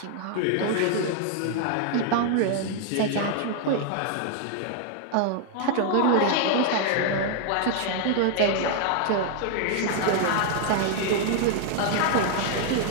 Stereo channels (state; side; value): different; both; correlation 0.00